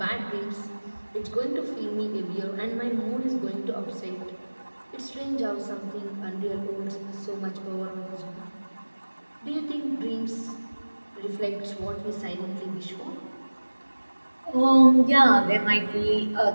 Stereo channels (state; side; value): inverted; both; correlation -1.00